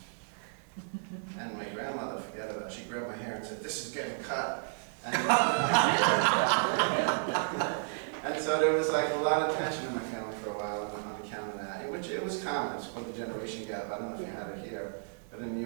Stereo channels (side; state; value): left; silent; 55 dB below the other